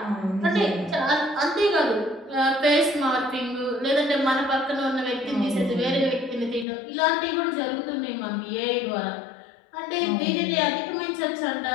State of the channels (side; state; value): right; drops out; at 6.7 s